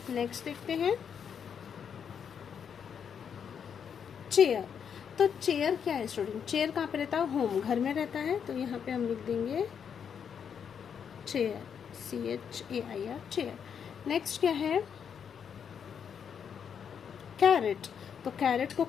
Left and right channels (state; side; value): quieter; right; 7.5 dB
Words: नेक्स्ट देखते हैं चेयर। तो चेयर क्या है स्टूडेंट? चेयर कहाँ पे रहता है? होम, घर में रहता है तो यहाँ पे हम लिख देंगे चेयर, CHAIR चेयर। नेक्स्ट क्या है? कैरेट। तो कैरेट को